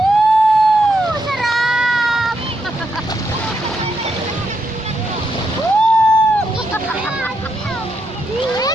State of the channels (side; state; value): both; normal; correlation 0.81